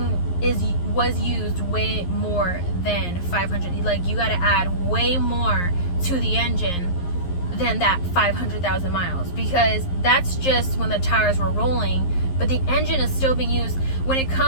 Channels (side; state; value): right; late; 11 ms